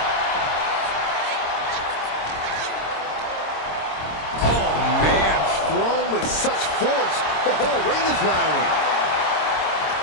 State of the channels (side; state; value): right; late; 26 ms